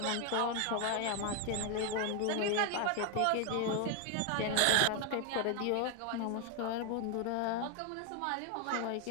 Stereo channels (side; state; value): both; different; correlation 0.00